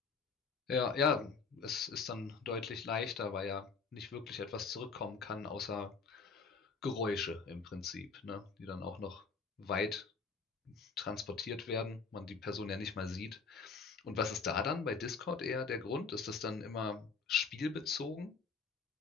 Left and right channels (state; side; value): quieter; right; 5.0 dB